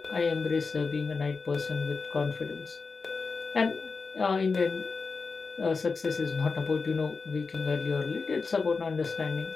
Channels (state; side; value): quieter; right; 4.5 dB